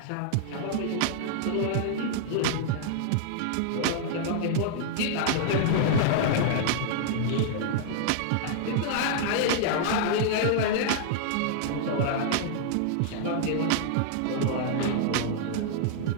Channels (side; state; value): both; different; correlation -0.01